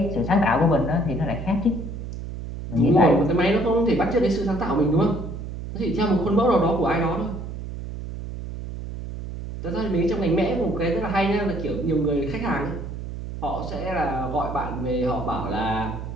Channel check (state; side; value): noise; right; hum, 8 dB below the sound